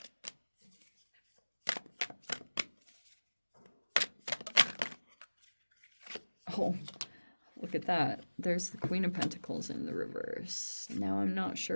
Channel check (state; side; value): inverted; both; correlation -1.00